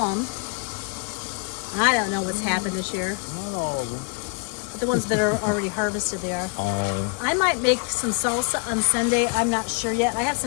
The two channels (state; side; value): quieter; right; 38.7 dB